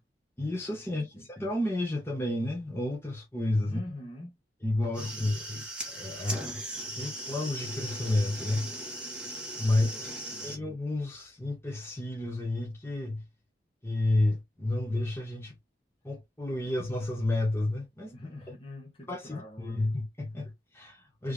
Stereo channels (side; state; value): both; normal; correlation 0.87